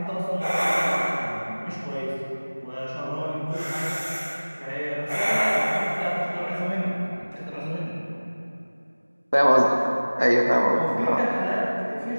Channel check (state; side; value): inverted; both; correlation -1.00